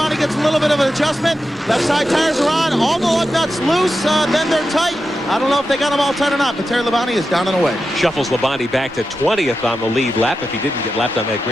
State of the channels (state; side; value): normal; both; correlation 0.90